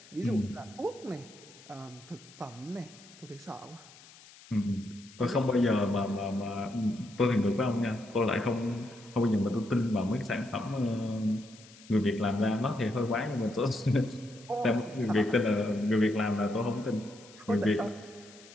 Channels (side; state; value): left; noise; hiss, 22 dB below the sound